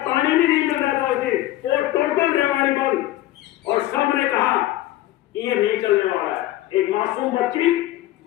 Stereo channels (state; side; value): quieter; right; 15.4 dB